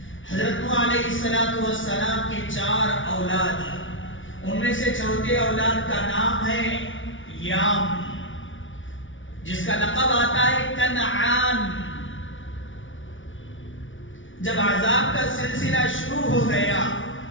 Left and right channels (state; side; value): late; right; 0.56 ms